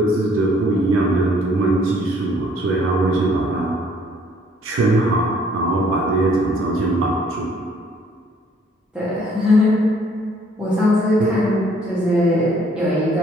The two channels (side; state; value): both; normal; correlation 0.62